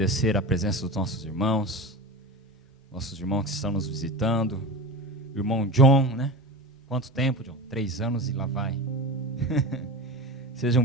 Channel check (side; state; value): both; normal; correlation 0.27